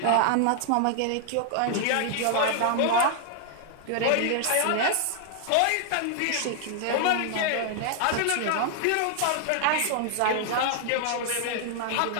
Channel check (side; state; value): both; different; correlation 0.00